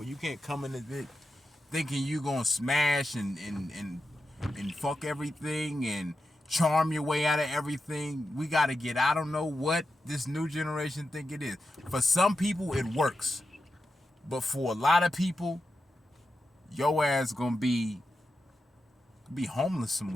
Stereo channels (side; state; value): both; normal; correlation 0.89